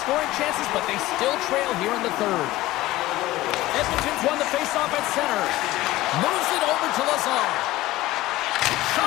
chances, but they still trail here in the third. Edmonton's won the faceoff at center. Moves it over to Lazar.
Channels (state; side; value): quieter; right; 16.9 dB